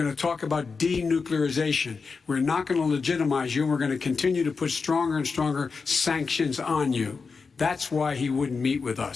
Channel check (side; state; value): right; quieter; 4.9 dB